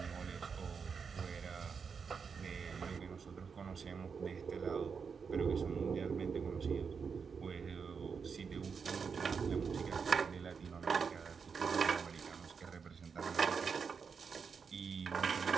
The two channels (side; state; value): left; quieter; 5.9 dB